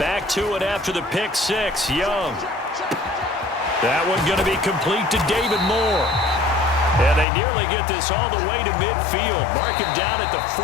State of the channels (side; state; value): right; drops out; at 7.2 s